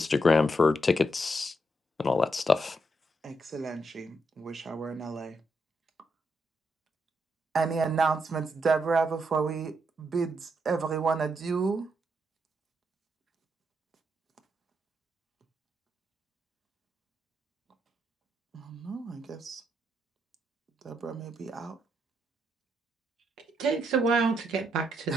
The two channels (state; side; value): normal; both; correlation 0.79